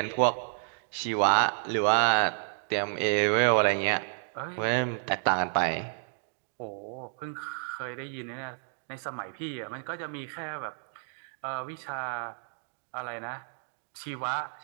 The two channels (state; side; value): silent; left; digital silence